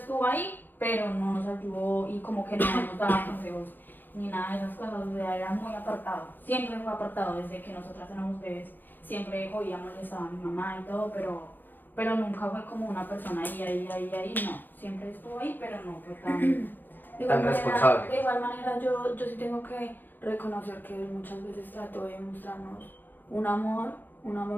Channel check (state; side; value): late; right; 0.089 ms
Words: ahí, pero no nos ayudó y como que no nos daba consejos ni nada de esas cosas, o sea, era muy apartado, siempre fue apartado desde que nosotras éramos bebés, siempre oía molestaba a mi mamá y todo, pero nunca fue como una persona ahí, no. Siempre estuvo ahí, pero no fue Tan responsable. De igual manera yo sí tengo que reconocer que él muchas veces trató de mostrarnos un